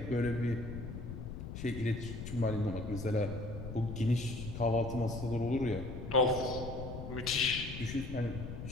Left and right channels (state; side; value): noise; left; rumble, 8 dB below the sound